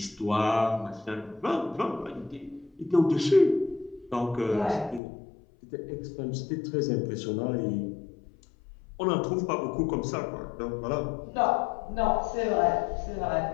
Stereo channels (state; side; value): drops out; right; at 5.0 s